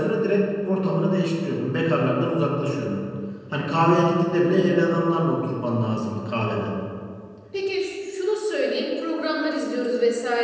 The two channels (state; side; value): identical; both; correlation 1.00